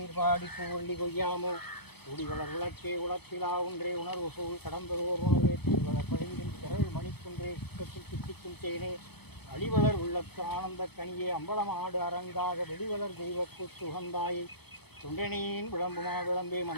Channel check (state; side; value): late; right; 0.98 ms